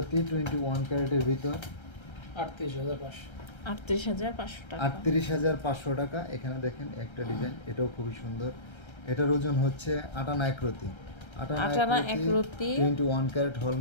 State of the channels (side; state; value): right; late; 1.3 ms